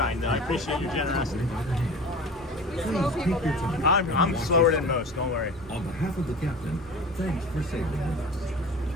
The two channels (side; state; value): both; normal; correlation 0.37